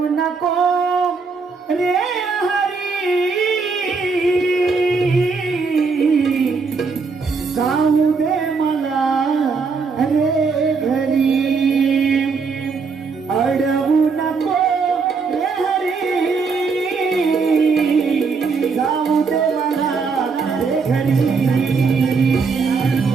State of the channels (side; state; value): left; quieter; 4.8 dB